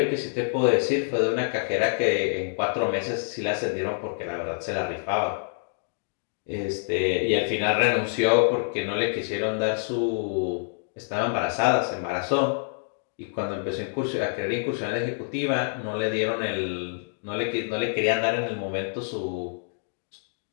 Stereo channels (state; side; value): silent; right; digital silence